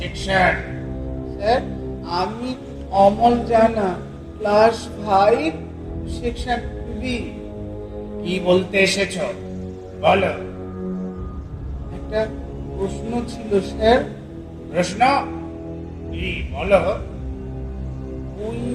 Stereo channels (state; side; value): identical; both; correlation 1.00